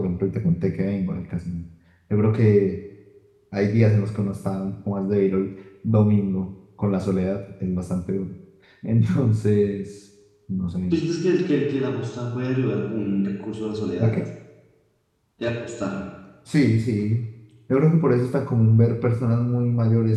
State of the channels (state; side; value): identical; both; correlation 1.00